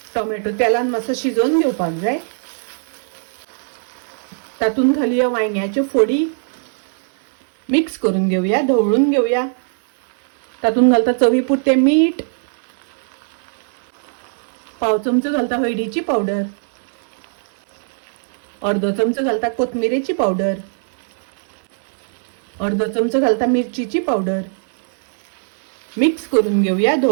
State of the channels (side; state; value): left; silent; digital silence